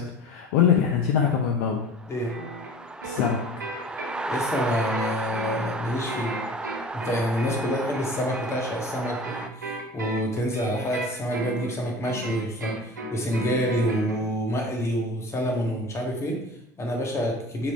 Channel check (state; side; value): normal; both; correlation 0.40